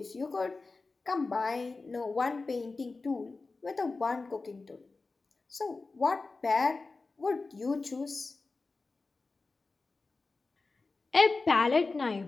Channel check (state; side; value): quieter; right; 3.8 dB